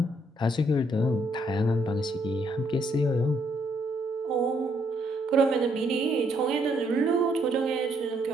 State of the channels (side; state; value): both; normal; correlation 0.71